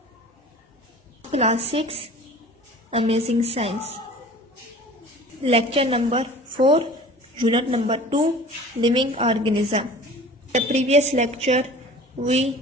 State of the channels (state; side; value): normal; both; correlation 0.43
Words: Class 6 Amazing Science. Lecture number 4, Unit number 2, Living Organism. The previous lecture